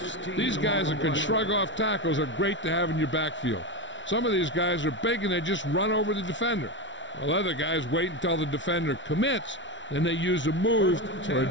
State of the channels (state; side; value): late; right; 0.55 ms